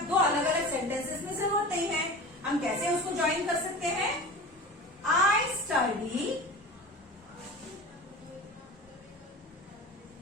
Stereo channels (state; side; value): normal; both; correlation 0.33